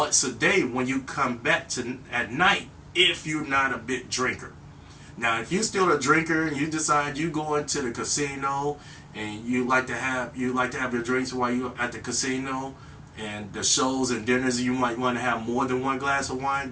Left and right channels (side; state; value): both; identical; correlation 1.00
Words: a day when you come back at night, if you're not a big drinker. Now, if you're still a drinker and you decide you go into the casino and you like to have your drinks while you're at the casino, and the shows and dinners, you might want to have more than 1 glass of wine,